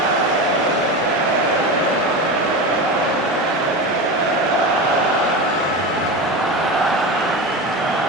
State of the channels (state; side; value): normal; both; correlation 0.23